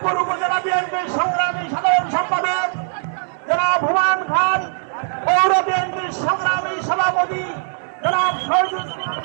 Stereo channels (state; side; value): silent; left; digital silence